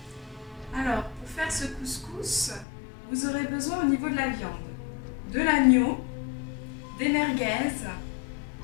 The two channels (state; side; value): drops out; right; at 2.7 s